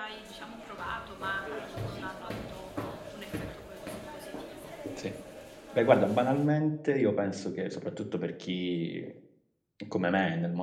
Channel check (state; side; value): identical; both; correlation 1.00